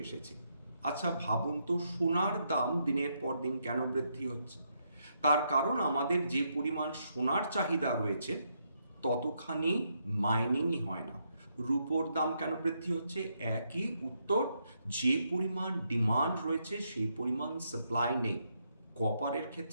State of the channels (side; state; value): both; inverted; correlation -0.78